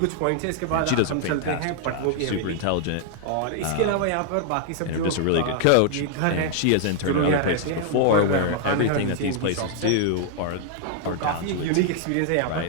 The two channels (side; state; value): both; different; correlation 0.00